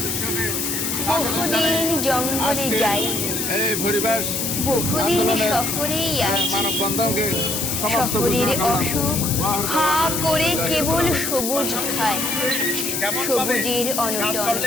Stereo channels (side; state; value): left; noise; hiss, 1 dB below the sound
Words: বহুদিন জঙ্গলে যাইনি, বহুদিন শহরেই আছি। শহরের অসুখ হা করে কেবল সবুজ খায়, সবুজের অনটন